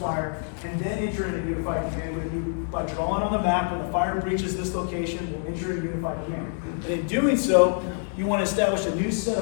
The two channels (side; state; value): right; silent; 59 dB below the other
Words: and then enter into unified command with you by drawing on the map when the fire breaches this location, we'll enter into unified command. And in doing so, you want to establish a new set